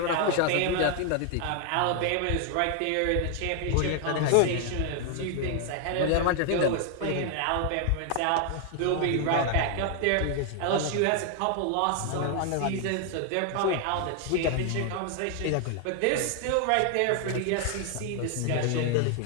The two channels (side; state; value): both; different; correlation 0.00